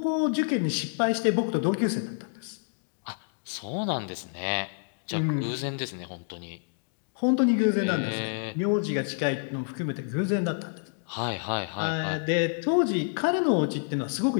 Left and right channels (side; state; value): right; silent; digital silence